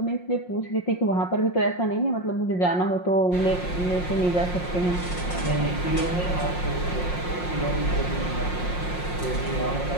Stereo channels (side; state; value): right; late; 5.6 ms